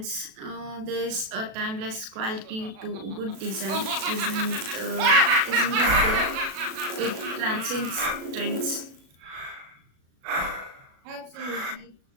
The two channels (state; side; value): late; left; 37 ms